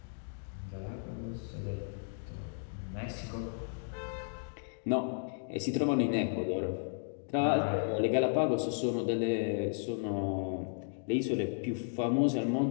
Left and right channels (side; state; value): right; silent; digital silence